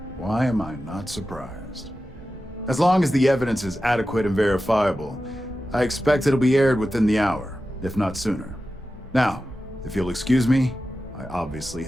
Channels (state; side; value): normal; both; correlation 0.93